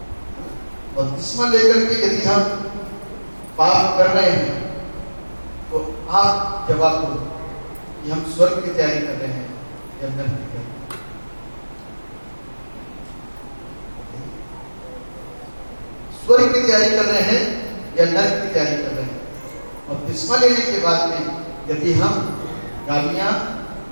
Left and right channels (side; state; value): both; inverted; correlation -1.00